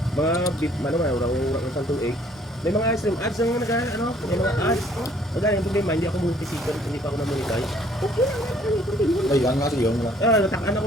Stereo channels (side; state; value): both; normal; correlation 0.60